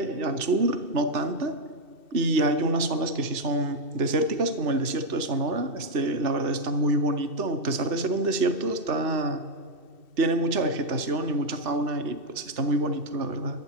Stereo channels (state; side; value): late; left; 2.7 ms